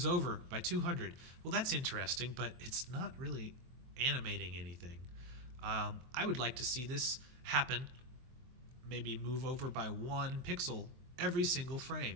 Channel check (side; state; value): left; late; 23 ms